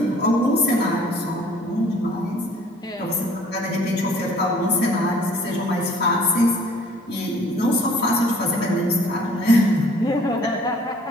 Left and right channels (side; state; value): both; normal; correlation 0.55